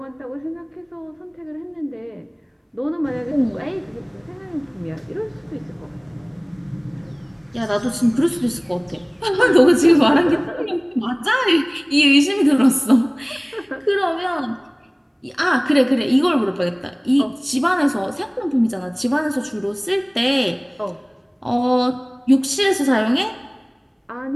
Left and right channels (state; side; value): identical; both; correlation 1.00